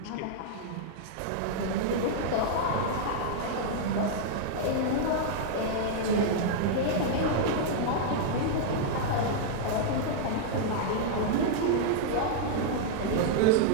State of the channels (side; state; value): both; different; correlation -0.01